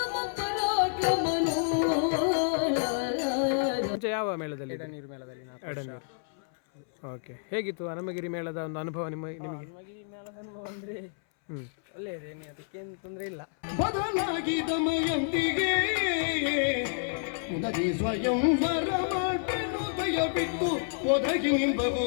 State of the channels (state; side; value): silent; right; 58 dB below the other